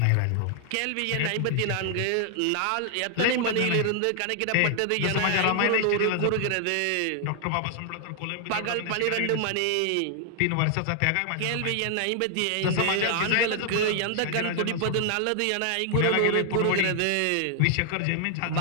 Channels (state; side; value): different; both; correlation 0.00